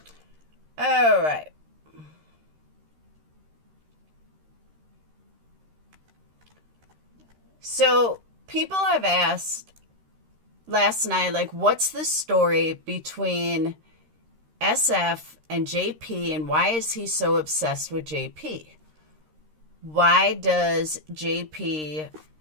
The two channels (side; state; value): left; late; 13 ms